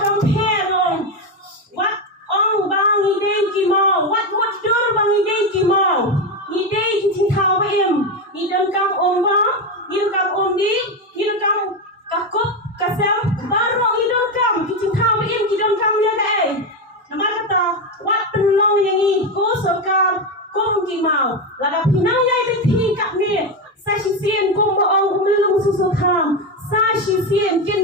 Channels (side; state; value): both; normal; correlation 0.12